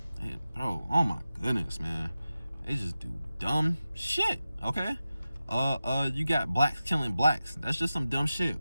And, bro, oh my goodness, man. They just do dumb shit, okay? You got blacks killing blacks. That's just some dumb shit.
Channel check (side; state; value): both; inverted; correlation -0.93